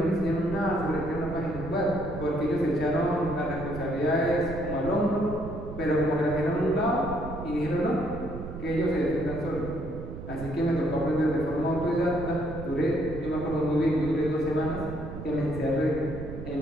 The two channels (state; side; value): noise; right; rumble, 9 dB below the sound